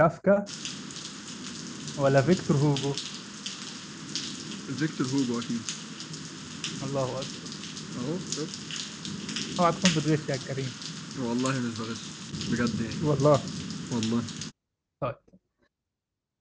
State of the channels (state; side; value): identical; both; correlation 1.00